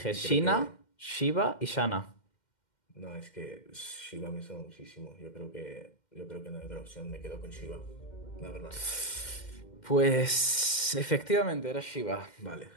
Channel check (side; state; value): right; late; 2.1 ms